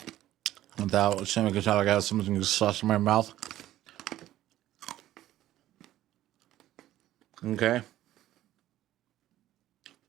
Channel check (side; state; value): left; quieter; 14.0 dB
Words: without saying like I got something sauce in my mouth. Okay.